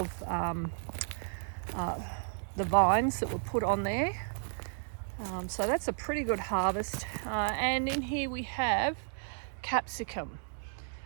the vines that were put on there. So that's a pretty good harvest. And in here we have capsicum.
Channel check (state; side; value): silent; left; digital silence